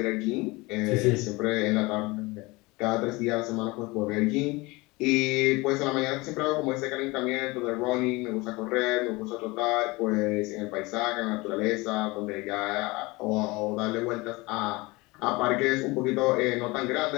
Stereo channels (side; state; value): right; quieter; 23.4 dB